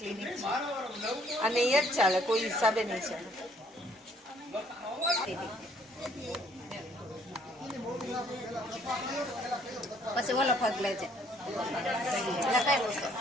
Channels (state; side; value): normal; both; correlation 0.63